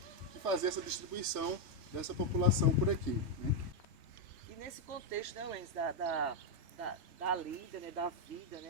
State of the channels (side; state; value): left; late; 3.2 ms